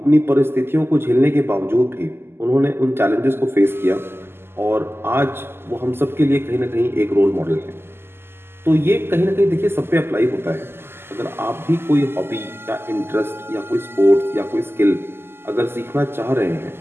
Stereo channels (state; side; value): late; left; 0.12 ms